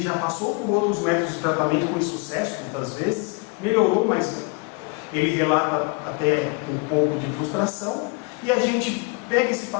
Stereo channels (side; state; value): right; quieter; 31.0 dB